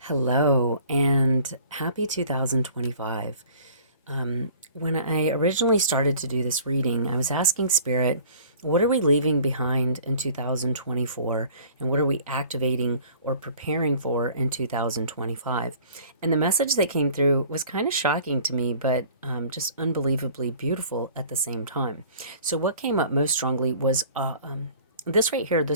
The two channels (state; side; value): inverted; both; correlation -0.49